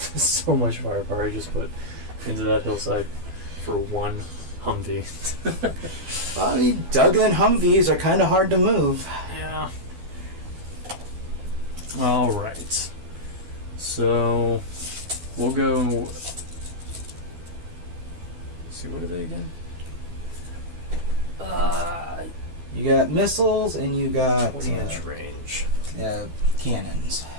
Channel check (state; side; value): late; left; 12 ms